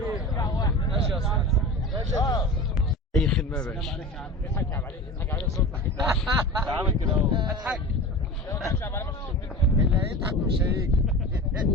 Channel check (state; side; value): normal; both; correlation 0.32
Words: ماشي يا استاذ. اي خدمه يا باشا. اضحك عليه صوتك. عامل كده اهو. اضحك. اللي هيضحك مش هيجي.